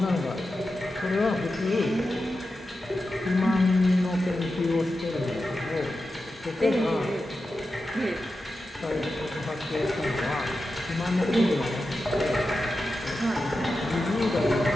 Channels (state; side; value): normal; both; correlation 0.91